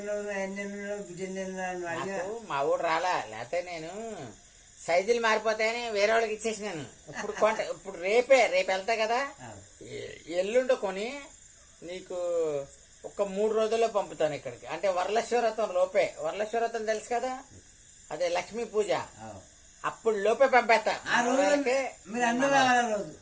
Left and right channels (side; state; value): both; identical; correlation 1.00